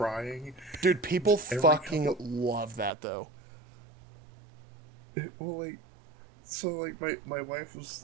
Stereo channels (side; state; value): left; drops out; at 2.9 s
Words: Dude, people Every fucking couple- love that though. Well, like, so like my wife was